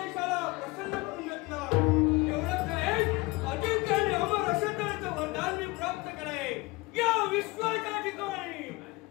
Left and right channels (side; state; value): right; quieter; 23.4 dB